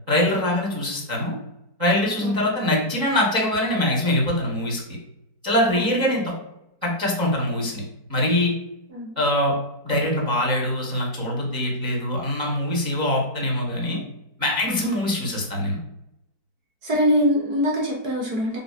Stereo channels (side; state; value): left; late; 4.5 ms